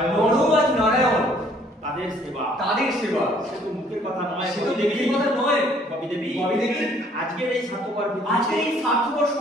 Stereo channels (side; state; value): both; normal; correlation 0.61